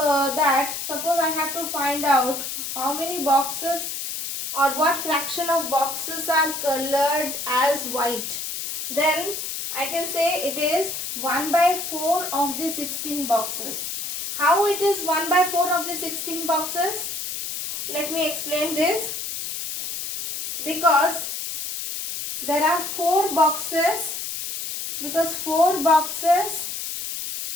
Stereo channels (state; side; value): noise; left; hiss, 5 dB below the sound